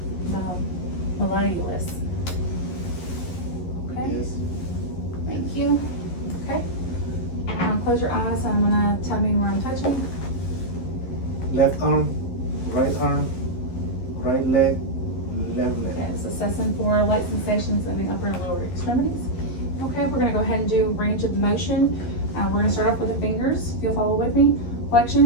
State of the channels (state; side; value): late; right; 12 ms